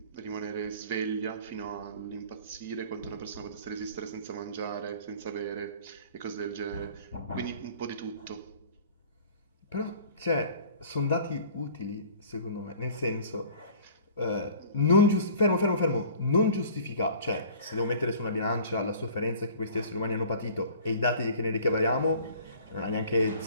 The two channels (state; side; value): inverted; both; correlation -0.47